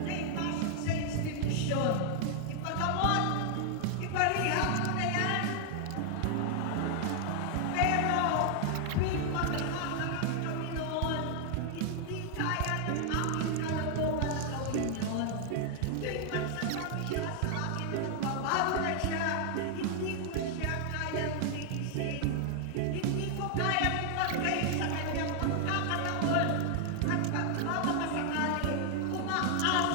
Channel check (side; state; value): both; different; correlation 0.00